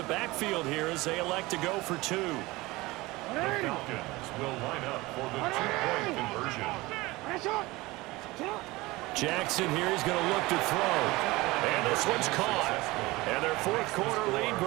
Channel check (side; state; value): left; quieter; 21.0 dB